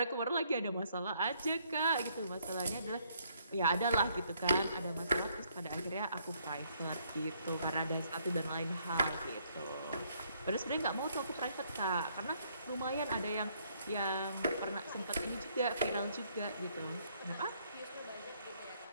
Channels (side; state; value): both; inverted; correlation -0.69